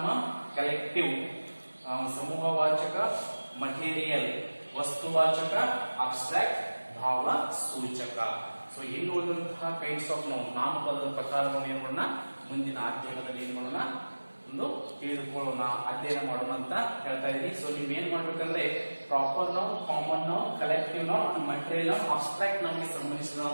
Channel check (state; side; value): inverted; both; correlation -1.00